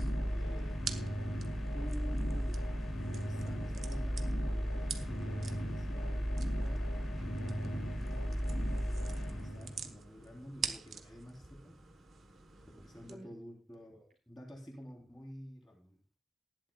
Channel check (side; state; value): both; normal; correlation 0.94